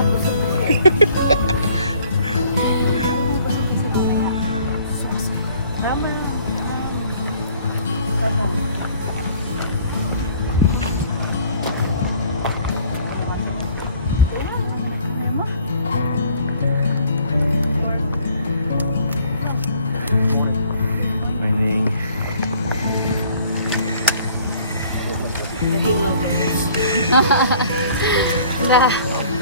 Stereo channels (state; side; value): inverted; both; correlation -0.56